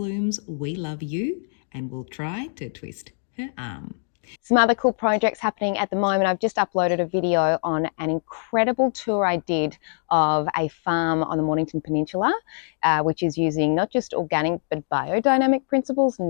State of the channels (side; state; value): right; silent; digital silence